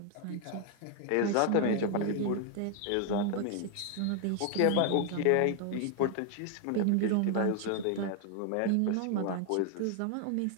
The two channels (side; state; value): both; different; correlation 0.00